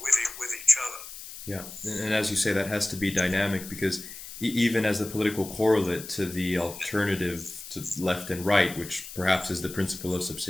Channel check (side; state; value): left; noise; hiss, 12 dB below the sound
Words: each other. Yeah, and as you say, that has to be dynamic, because even as a political correlate to the alternative to left and right, which perhaps is the principle of